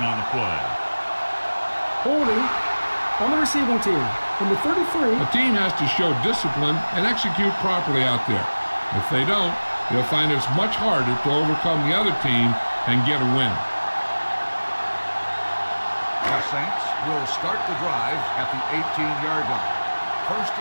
on the play. Holding on the receiving team. Number 33. A team has to show discipline and execute properly out there. If they don't, they'll find it's much harder to overcome the other team and get a win. The Saints will start the drive at the 18-yard line. 1st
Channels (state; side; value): inverted; both; correlation -1.00